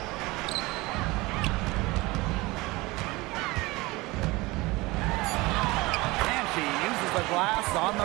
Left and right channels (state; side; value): quieter; left; 22.1 dB